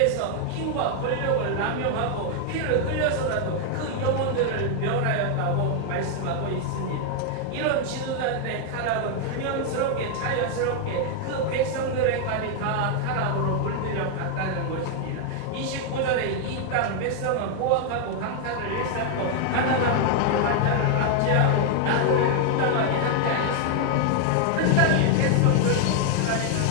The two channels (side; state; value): both; different; correlation 0.00